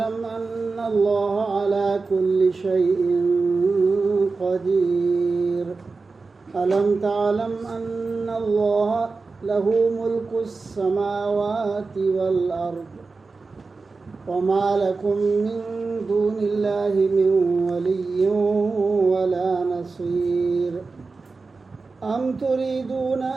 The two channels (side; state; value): left; quieter; 4.0 dB